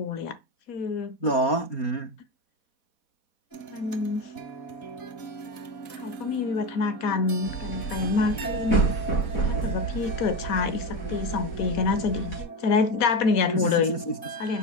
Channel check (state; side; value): late; right; 4.2 ms